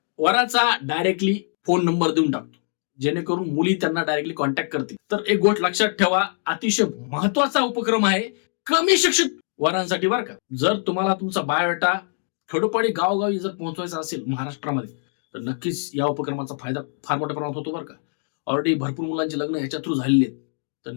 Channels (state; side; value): silent; right; 59 dB below the other